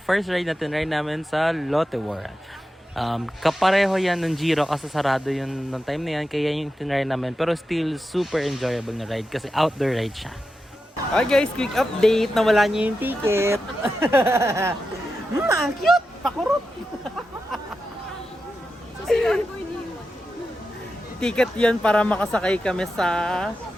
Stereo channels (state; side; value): normal; both; correlation 0.89